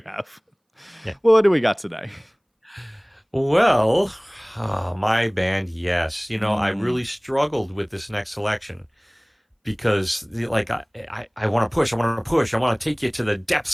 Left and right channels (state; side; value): identical; both; correlation 1.00